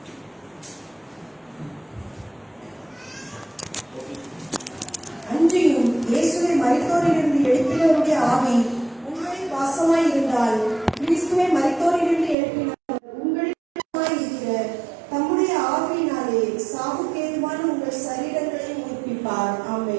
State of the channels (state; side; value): drops out; left; at 12.4 s